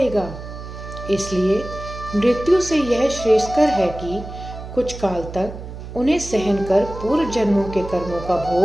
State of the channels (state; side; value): noise; right; hum, 11 dB below the sound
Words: इसलिए मृत्यु से यह श्रेयस्कर है कि कुछ काल तक उन्हें सहन कर पूर्व जन्मों के कर्मों का